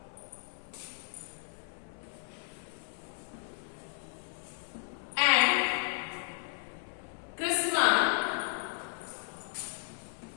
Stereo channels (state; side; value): silent; right; 55 dB below the other